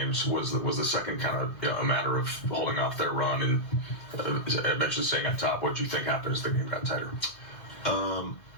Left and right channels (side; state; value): right; late; 2.0 ms